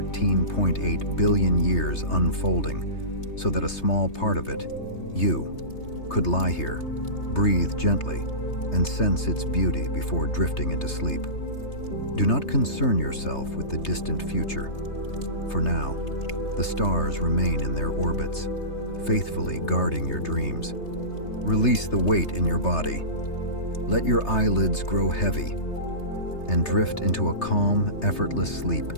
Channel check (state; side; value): late; right; 3.3 ms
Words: billion years unfolding, so that a small part of it, you, could lie here, breathe gently, and sense its beauty before drifting into sleep. Do not concern yourself with the distant future. For now, the stars remain in their orbits, faithfully guarding your dreams. Release the weight in your body. Let your eyelids grow heavy and drift into a calm, effortless sleep